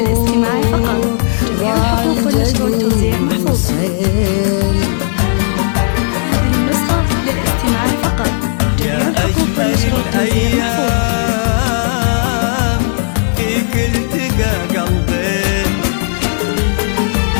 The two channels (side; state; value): right; silent; digital silence